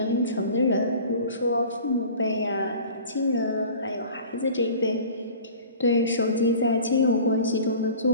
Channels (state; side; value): inverted; both; correlation -0.42